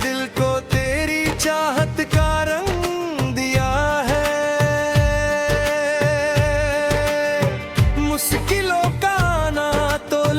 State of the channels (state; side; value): identical; both; correlation 1.00